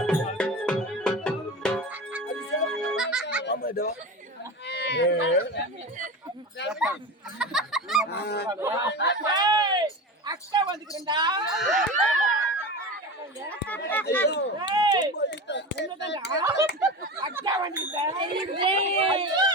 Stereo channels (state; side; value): normal; both; correlation 0.27